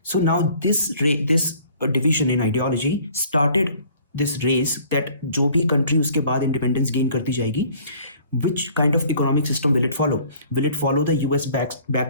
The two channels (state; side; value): inverted; both; correlation -0.54